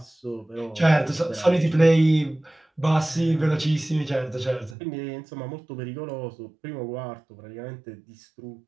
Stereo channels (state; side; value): drops out; left; at 4.8 s